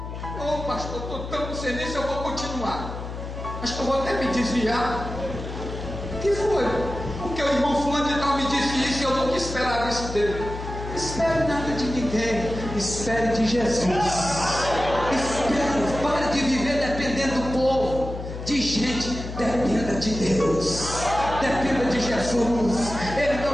Ô pastor, estou tão sem nisso, eu vou continuar. Acho que eu vou até me desviar. O que foi? Porque o irmão fulano de tal me disse isso e eu nunca esperava isso dele. Espere nada de ninguém. Espere de Jesus. Espere. Pare de viver dependendo do povo, de gente. Dependa de Deus. Dependa de Jesus. Ele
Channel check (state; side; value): noise; left; hum, 8 dB below the sound